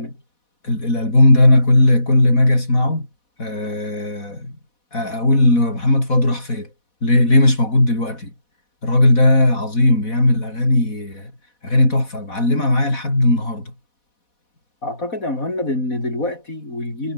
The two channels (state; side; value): late; right; 4.1 ms